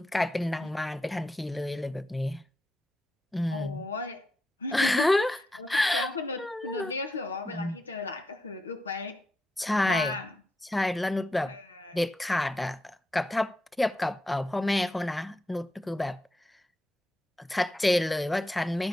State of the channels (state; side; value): normal; both; correlation 0.86